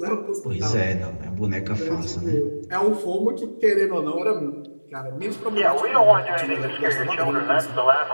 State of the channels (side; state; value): both; inverted; correlation -1.00